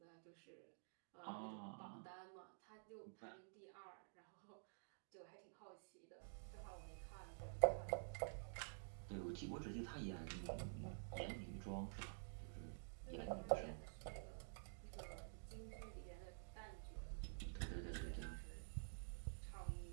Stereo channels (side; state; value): left; silent; digital silence